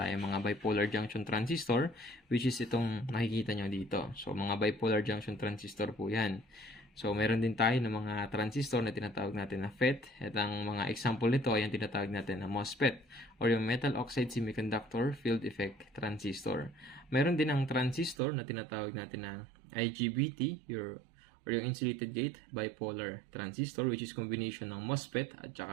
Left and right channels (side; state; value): left; drops out; at 18.2 s